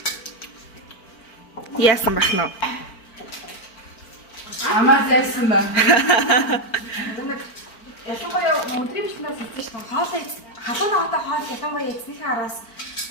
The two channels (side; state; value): right; late; 4.4 ms